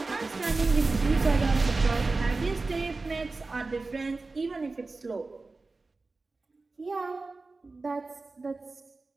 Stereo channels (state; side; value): quieter; left; 3.6 dB